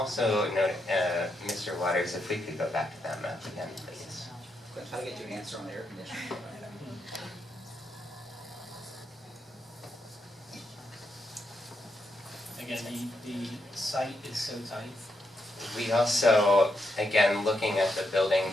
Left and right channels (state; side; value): normal; both; correlation 0.81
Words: note, Mr. Waters, if we could go back to that map again, please. I'm trying to get you an answer on the air conditioning. Again, the site is so tight. We also, again, looking at the building